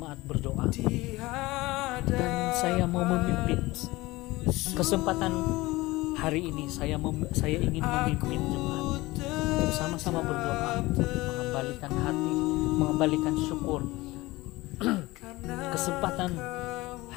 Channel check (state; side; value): quieter; right; 20.3 dB